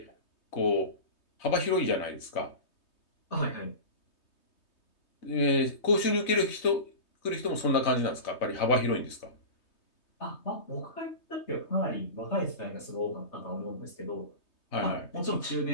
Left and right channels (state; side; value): late; right; 3.2 ms